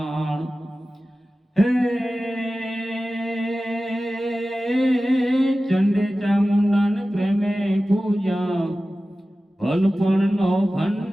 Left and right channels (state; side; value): normal; both; correlation 0.95